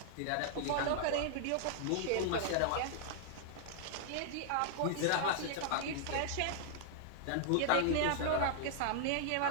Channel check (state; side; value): different; both; correlation -0.01